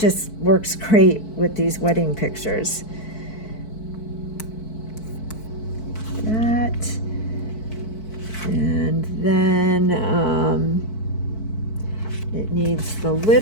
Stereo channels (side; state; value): right; late; 4.6 ms